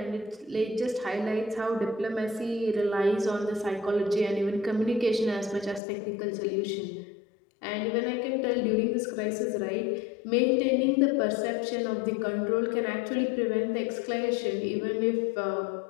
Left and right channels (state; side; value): drops out; right; at 5.8 s